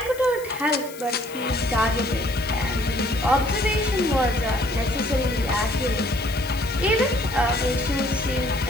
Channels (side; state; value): left; noise; hiss, 17 dB below the sound